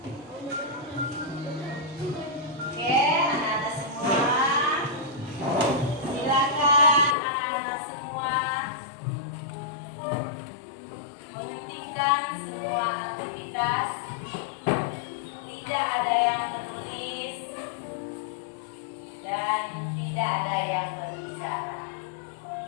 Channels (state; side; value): drops out; right; at 7.2 s